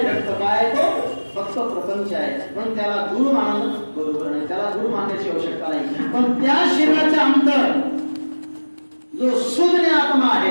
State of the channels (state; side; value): inverted; both; correlation -1.00